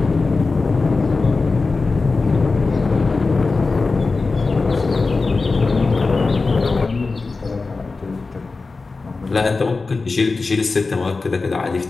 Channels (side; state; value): right; quieter; 3.9 dB